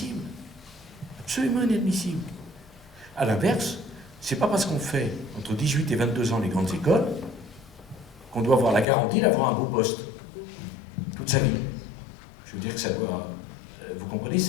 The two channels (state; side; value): drops out; right; at 8.8 s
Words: Absolument inadmissible. À l'inverse, c'est pas parce qu'on fait entre 18 et 22 ans les grandes écoles qu'on doit avoir la garantie d'avoir un beau poste toute sa vie. Je veux dire que ça doit, vous comprenez,